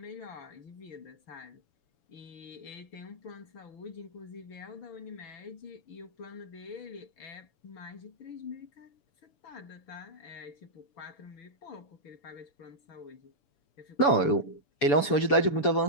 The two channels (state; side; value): late; right; 7.0 ms